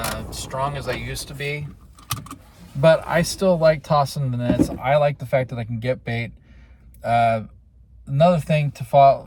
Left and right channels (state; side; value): identical; both; correlation 1.00